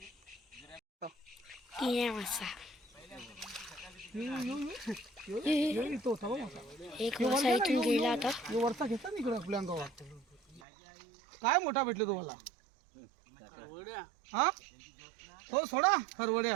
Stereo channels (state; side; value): drops out; left; at 10.6 s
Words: एक मासा इथून गेला आता. वरचा घेतला ना इकडे आपल्या अंगावर. काय मोठा भेटलो तुम्हाला? हा हो सोडा